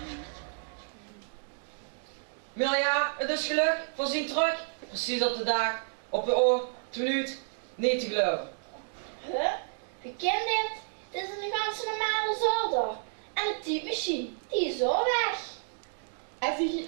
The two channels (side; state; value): left; silent; digital silence